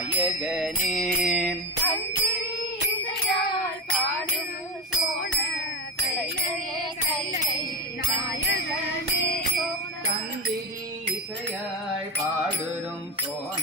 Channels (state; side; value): normal; both; correlation 0.17